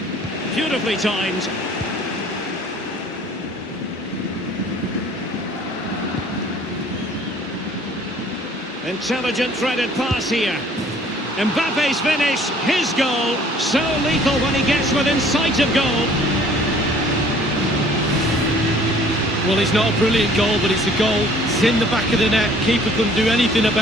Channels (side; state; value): both; normal; correlation 0.55